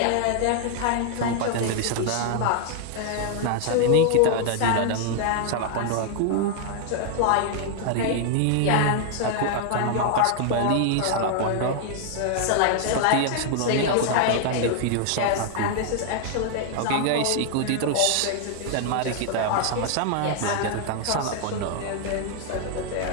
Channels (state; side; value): different; both; correlation 0.00